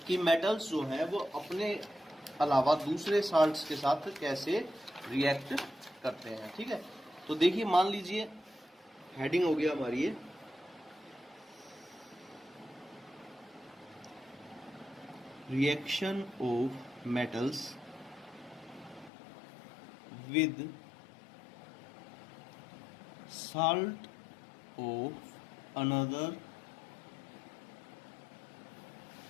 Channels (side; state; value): right; drops out; at 19.1 s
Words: कि मेटल्स जो है वो अपने अलावा दूसरे साल्ट्स के साथ कैसे रिएक्ट करते हैं। ठीक है, तो देखिए मान लीजिए हेडिंग हो गया हमारी ये reaction of metals with salt of another